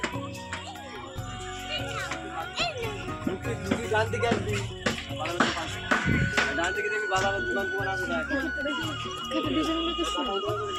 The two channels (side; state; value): both; identical; correlation 1.00